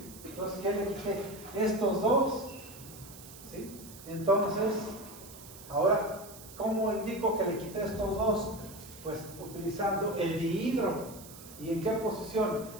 Entonces, ¿qué le quité? Estos 2. ¿Sí? Entonces, ahora, ¿cómo indico que le quité estos 2? Pues utilizando el dihidro. ¿Y en qué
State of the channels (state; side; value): noise; right; hiss, 17 dB below the sound